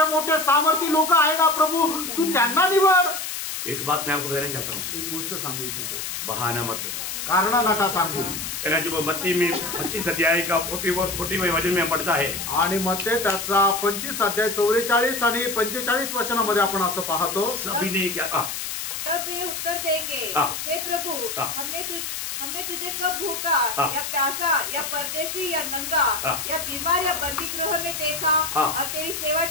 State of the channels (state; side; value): noise; left; hiss, 5 dB below the sound